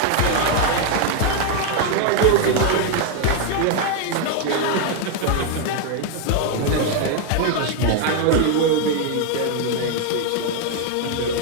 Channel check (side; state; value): both; different; correlation 0.01